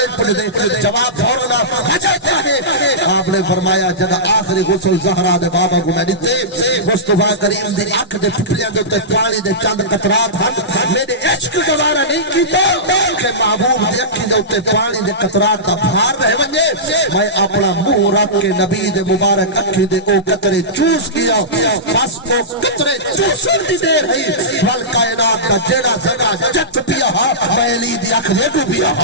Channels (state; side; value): normal; both; correlation -0.18